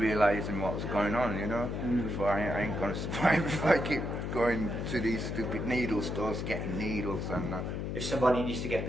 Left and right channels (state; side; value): noise; left; hum, 3 dB below the sound